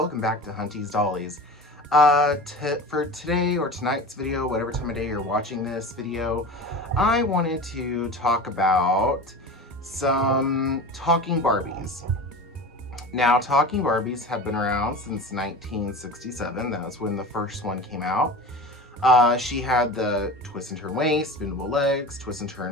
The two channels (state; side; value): normal; both; correlation 0.33